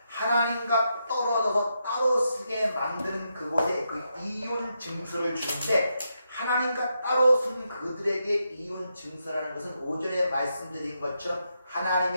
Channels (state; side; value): inverted; both; correlation -0.83